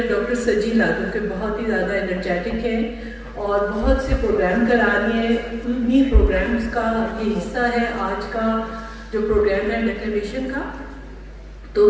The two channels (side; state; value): both; identical; correlation 1.00